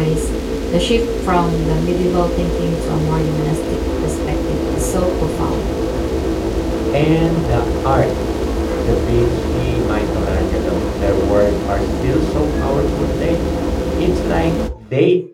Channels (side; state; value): both; identical; correlation 1.00